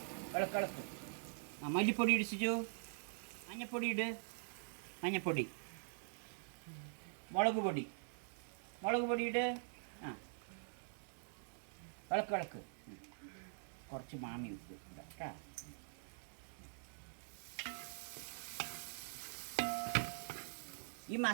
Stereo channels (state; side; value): silent; left; digital silence